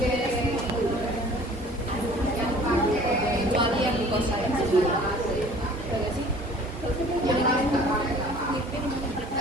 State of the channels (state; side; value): normal; both; correlation 0.49